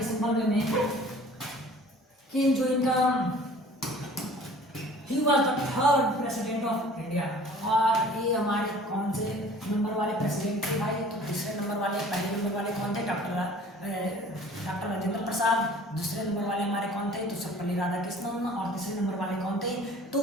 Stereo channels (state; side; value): normal; both; correlation 0.49